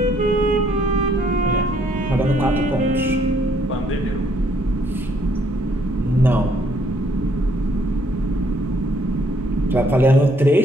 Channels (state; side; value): normal; both; correlation 0.67